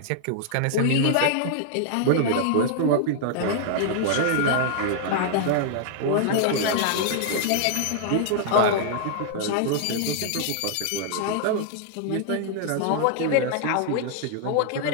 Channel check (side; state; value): both; different; correlation -0.01